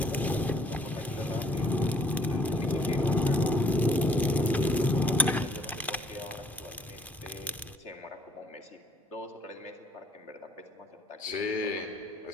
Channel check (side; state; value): both; normal; correlation 0.62